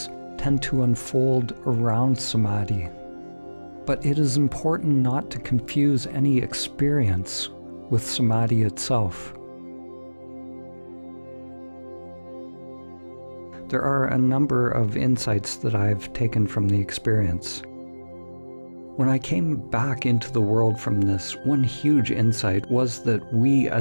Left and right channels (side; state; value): both; inverted; correlation -1.00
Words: tend to unfold around Samadhi. But it is important not to confuse any experience with Samadhi itself. There are a number of insights that I've taken from the experience. When I came back into the world from this, one huge insight was that we